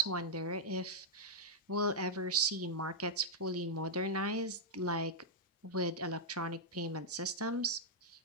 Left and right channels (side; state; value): both; normal; correlation -0.05